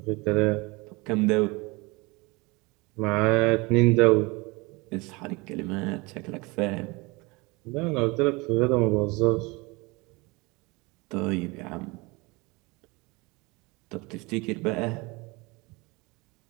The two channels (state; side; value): quieter; left; 25.3 dB